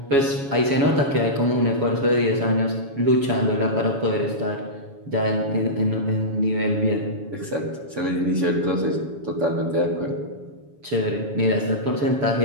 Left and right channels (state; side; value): late; left; 7.1 ms